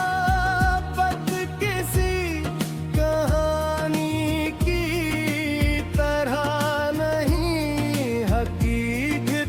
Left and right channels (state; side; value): identical; both; correlation 1.00